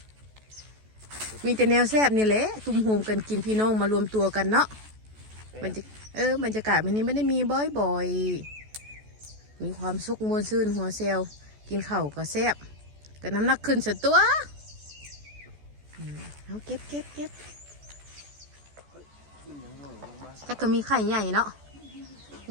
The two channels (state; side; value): late; left; 14 ms